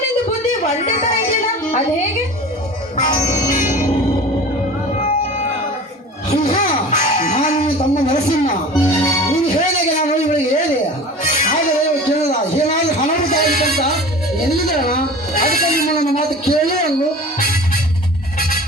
ನಿಂದು ಬುದ್ಧಿ ಒಂದೇ ತರ ಇದೆಯಲ್ಲ, ಅದು ಹೇಗೆ? ನಾನು ತಮ್ಮ ನರಸಿಂಹ, ನೀನು ಹೇಳಿದಾಗ ನಾನು ಇವಳಿಗೆ ಹೇಳಿ. ಆದರೆ ಕೇಳಲ್ಲ, ಏನಾದ್ರೂ ಹಣಾಭಿತ ಆಗಿತ್ತಂತ ಎಲ್ಲಿದ್ದಾಳ. ಅದಕ್ಕೆ ನಿಮ್ಮ ನನ್ನ ಮಾತು ಕೇಳಿ ಅಂದು.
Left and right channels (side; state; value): both; normal; correlation 0.38